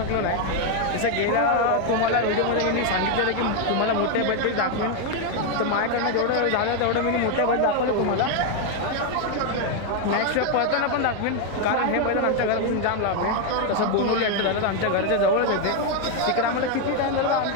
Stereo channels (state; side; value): different; both; correlation 0.01